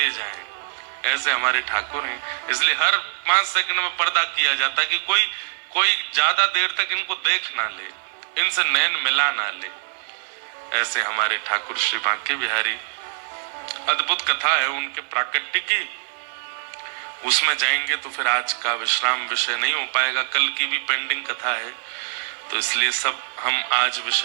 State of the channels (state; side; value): silent; left; digital silence